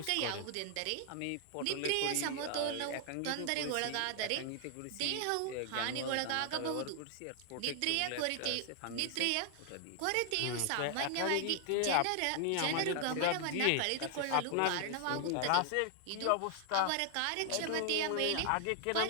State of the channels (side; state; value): both; different; correlation 0.00